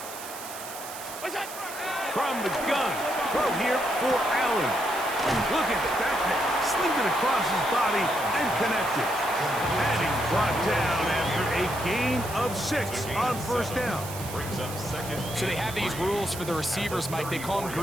From the gun, throw here for Allen. Look at that, slinged it across his body and connected. And he's brought down after a gain of 6 on first down. Brings up 2nd. So they have these rules for the receivers, Mike. They call them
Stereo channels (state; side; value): noise; right; hiss, 12 dB below the sound